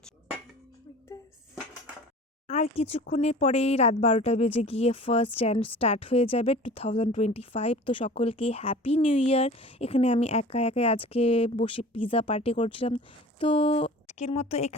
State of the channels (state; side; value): normal; both; correlation 0.41